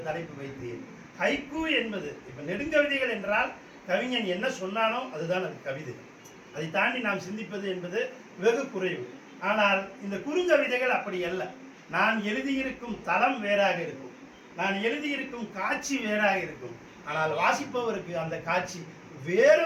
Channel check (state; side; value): identical; both; correlation 1.00